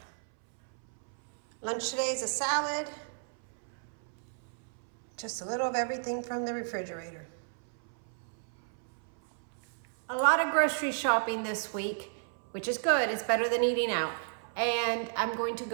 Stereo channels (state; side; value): silent; left; 56 dB below the other